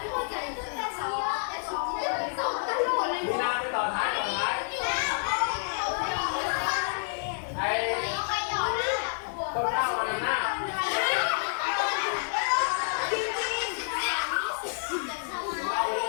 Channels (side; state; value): right; silent; 58 dB below the other